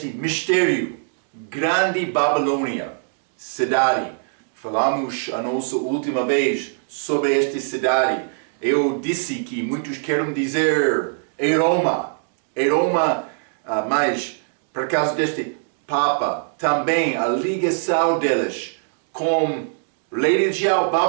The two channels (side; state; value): left; silent; digital silence